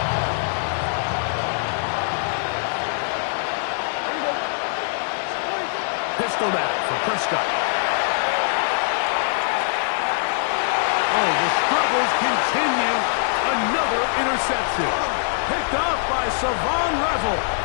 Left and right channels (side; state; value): right; silent; digital silence